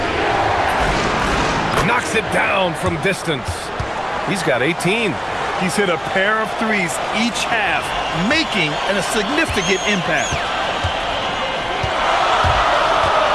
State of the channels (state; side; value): identical; both; correlation 1.00